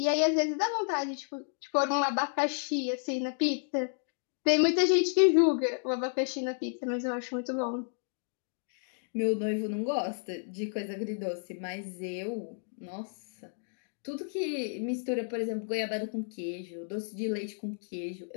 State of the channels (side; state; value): right; silent; digital silence